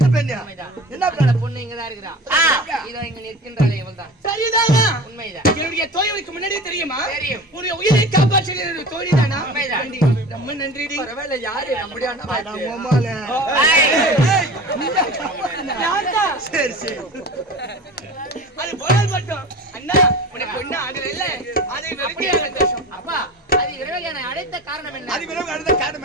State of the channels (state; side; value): normal; both; correlation 0.35